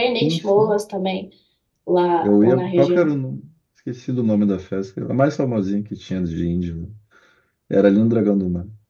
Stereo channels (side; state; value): both; identical; correlation 1.00